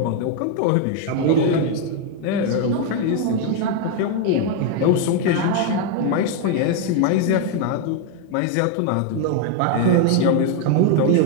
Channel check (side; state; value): both; different; correlation 0.00